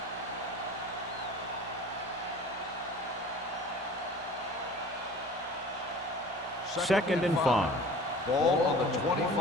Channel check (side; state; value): both; normal; correlation 0.43